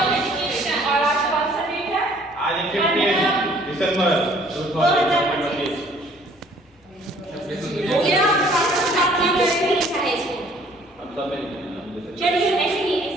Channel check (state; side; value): normal; both; correlation 0.58